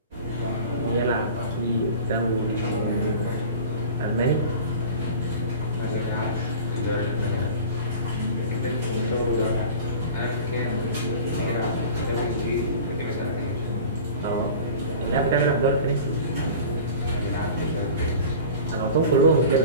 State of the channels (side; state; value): both; inverted; correlation -0.38